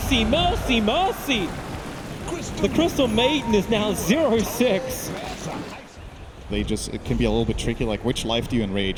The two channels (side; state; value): both; identical; correlation 1.00